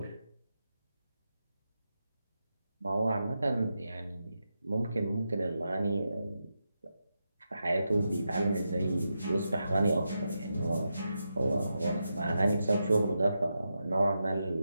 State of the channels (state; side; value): inverted; both; correlation -0.87